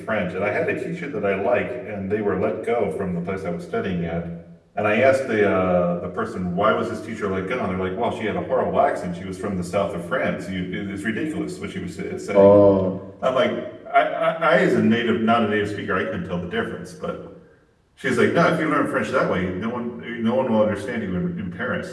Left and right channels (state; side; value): identical; both; correlation 1.00